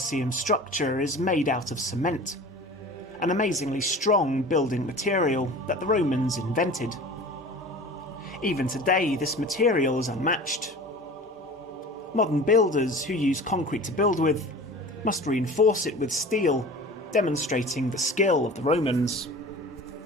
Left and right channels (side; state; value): both; normal; correlation 0.39